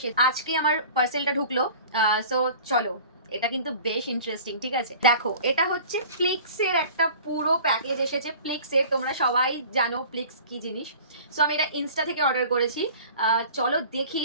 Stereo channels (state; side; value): inverted; both; correlation -0.43